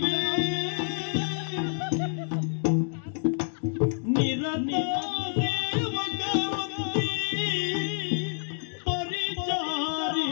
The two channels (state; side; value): silent; right; digital silence